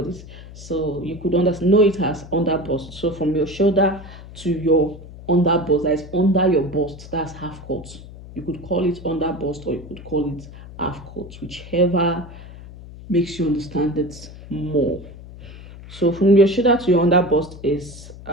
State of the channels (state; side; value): noise; left; hum, 16 dB below the sound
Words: So you could know it as under bust. So from your shoulder to your under bust, that is under your bust, that's half cut. You could call it under bust or you could call it half cut, whichever makes you understand it more. So from your shoulder to your under bust is